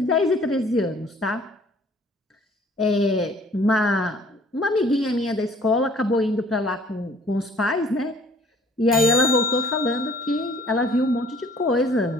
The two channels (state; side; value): normal; both; correlation 0.55